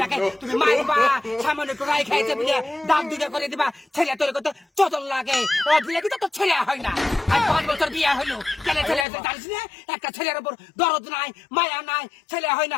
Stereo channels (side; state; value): right; drops out; at 9.1 s